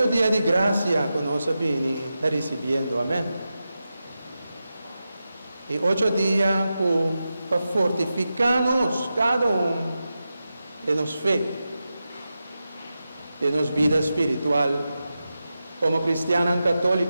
días de gracia que nos está recibiendo, amén. Y 8 días para fortificarnos, cada uno de nuestra fe, de nuestra vida espiritual, como cristiano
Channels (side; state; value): both; inverted; correlation -0.91